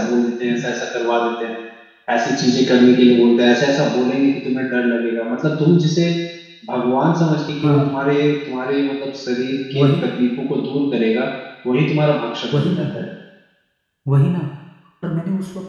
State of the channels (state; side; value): identical; both; correlation 1.00